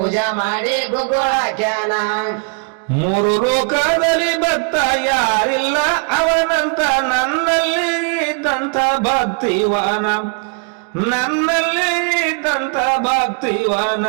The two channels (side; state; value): left; quieter; 36.7 dB